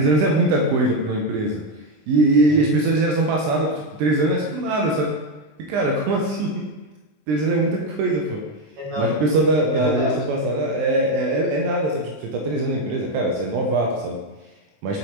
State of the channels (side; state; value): left; late; 20 ms